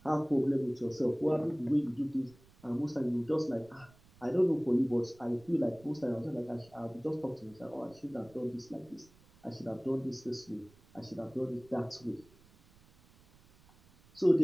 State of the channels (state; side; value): noise; right; rumble, 27 dB below the sound